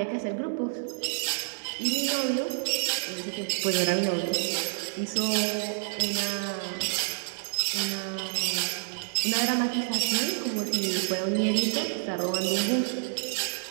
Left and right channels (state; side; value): silent; left; 59 dB below the other